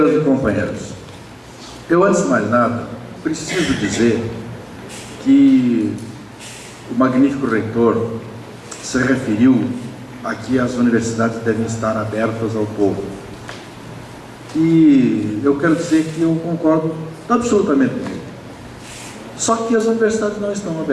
e companheiros, eu, antes de mais nada, preciso dizer que o magnífico reitor se referiu a que as universidades devem estar abertas ao povo. E eu quero dizer que eu concordo absolutamente com ele. Só que as universidades não estão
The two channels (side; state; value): both; identical; correlation 1.00